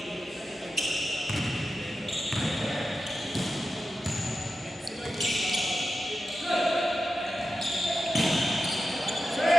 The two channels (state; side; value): normal; both; correlation 0.91